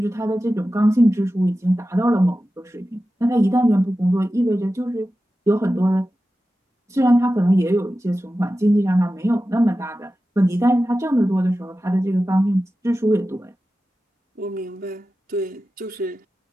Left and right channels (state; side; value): normal; both; correlation 0.94